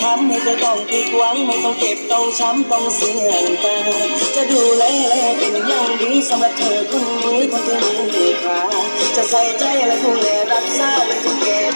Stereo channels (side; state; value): both; inverted; correlation -1.00